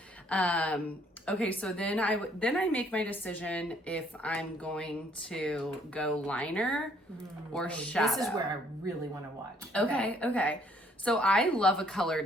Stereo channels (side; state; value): both; normal; correlation 0.64